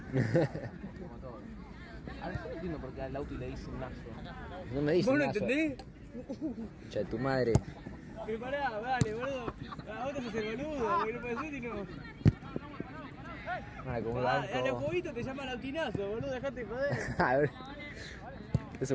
Como todo. Ahora yo no entiendo por qué al Lauti le dicen Nazo. No me dices ¿Vos no nada. entendés? Che, tu madre. Pero pará, dale, boludo. A vos te haces el boludo, porque no puede ser y no. Ahora como un A los banco. jueguitos te llaman autinazo, boludo, dejate de joder. A ver. Es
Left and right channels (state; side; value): identical; both; correlation 1.00